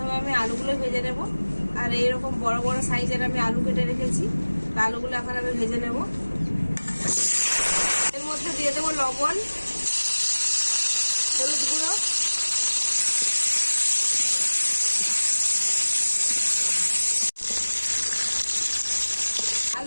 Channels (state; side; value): inverted; both; correlation -1.00